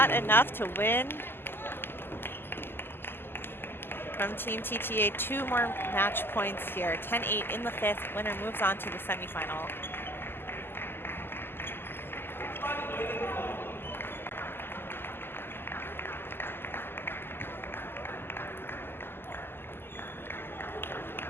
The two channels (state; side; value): late; right; 0.11 ms